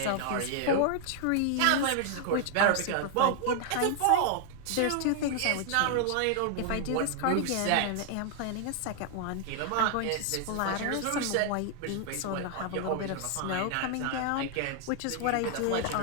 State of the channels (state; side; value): different; both; correlation 0.00